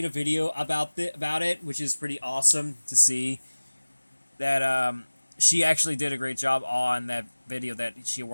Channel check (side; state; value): both; inverted; correlation -1.00